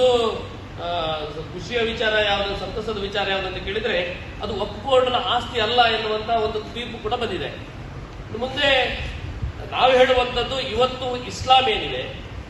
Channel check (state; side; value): identical; both; correlation 1.00